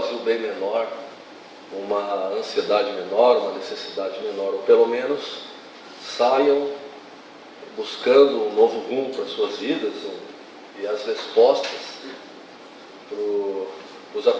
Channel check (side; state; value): both; identical; correlation 1.00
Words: bem menor, uma ansiedade menor, uma necessidade menor, ou pelo menos saiam buscando um novo rumo para as suas vidas e as respostas para os